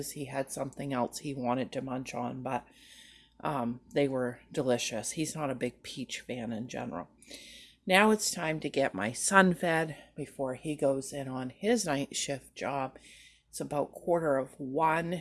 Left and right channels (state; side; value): identical; both; correlation 1.00